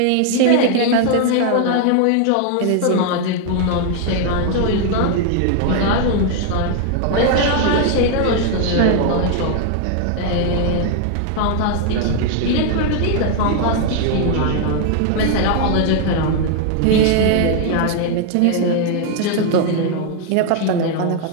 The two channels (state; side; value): different; both; correlation 0.00